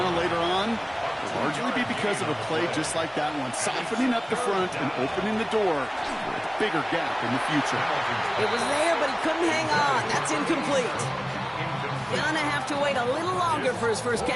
later on, it'll largely be because of a play just like that one, softening up the front and opening the door for a bigger gap in the future. It was there, but he couldn't hang on. That's incomplete. Gonna have to wait a little longer for his first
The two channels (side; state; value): both; identical; correlation 1.00